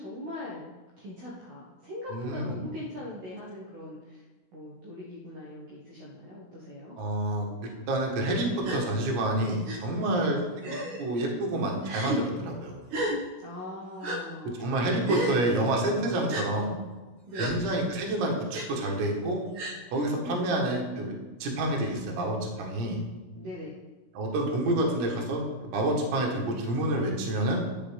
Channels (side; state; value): left; late; 16 ms